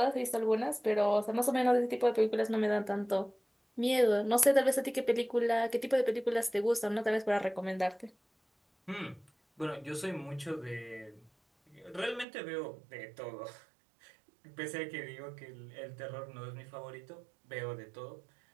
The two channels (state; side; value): drops out; left; at 12.2 s